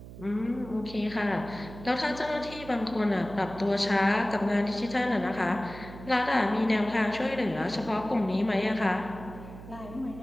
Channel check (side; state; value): right; noise; hum, 14 dB below the sound